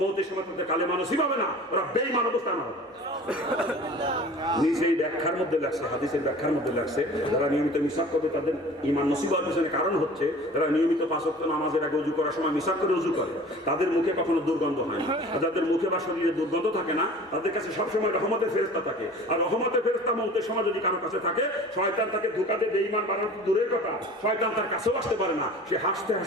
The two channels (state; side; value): normal; both; correlation 0.43